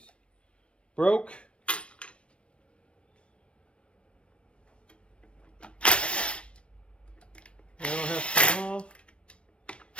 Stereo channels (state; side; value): late; right; 0.059 ms